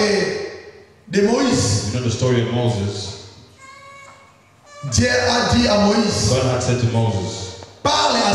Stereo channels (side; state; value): both; identical; correlation 1.00